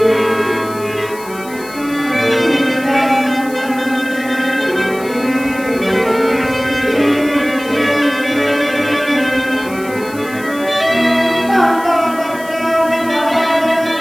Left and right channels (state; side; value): noise; left; hiss, 18 dB below the sound